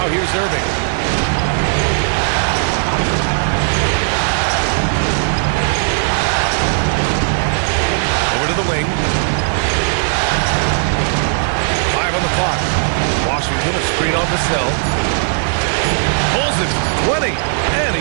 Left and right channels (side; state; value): left; silent; digital silence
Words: here's Irving. Over to the wing. 5 on the clock. Washington a screen on Vassell. Pulls it 20, and